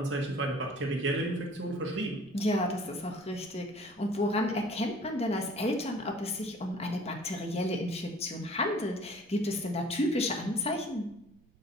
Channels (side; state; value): right; noise; rumble, 29 dB below the sound